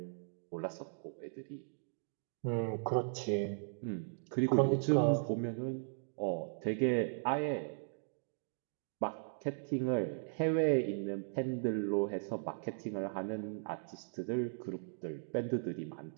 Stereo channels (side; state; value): left; silent; digital silence